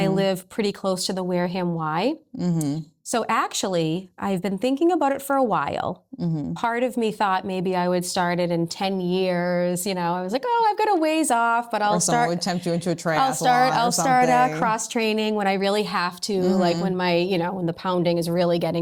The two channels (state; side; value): identical; both; correlation 1.00